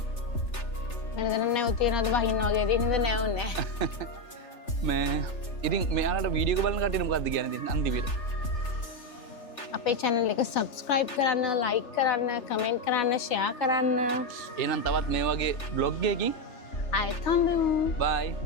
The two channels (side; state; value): right; late; 3.4 ms